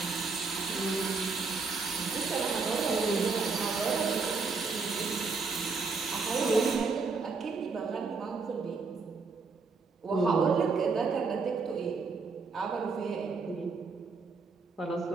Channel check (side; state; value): left; quieter; 4.5 dB